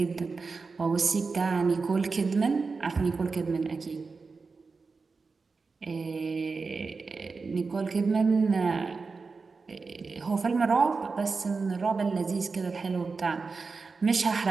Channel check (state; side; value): quieter; left; 4.4 dB